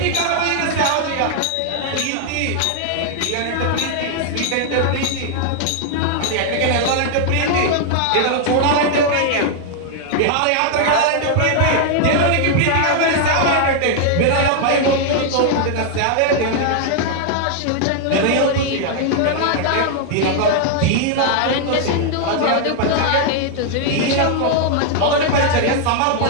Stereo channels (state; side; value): different; both; correlation 0.00